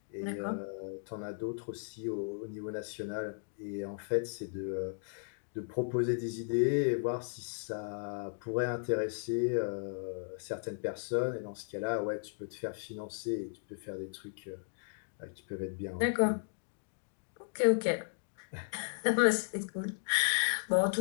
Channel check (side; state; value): right; silent; digital silence